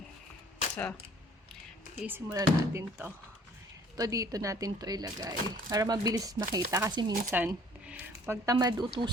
So, isimulan natin to. Ito dito natin to ilagay. Para mabilis makita. Kasi minsan, pag tamad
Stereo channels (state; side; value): normal; both; correlation 0.55